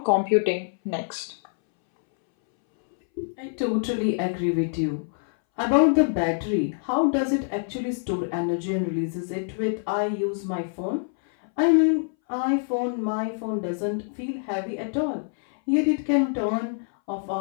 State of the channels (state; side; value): silent; right; 61 dB below the other